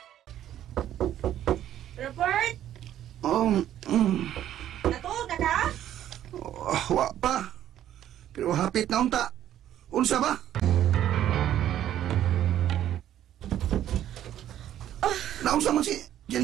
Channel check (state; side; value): quieter; left; 11.6 dB